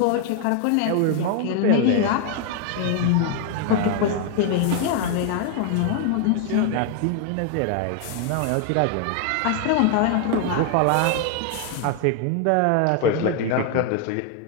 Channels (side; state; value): both; different; correlation 0.00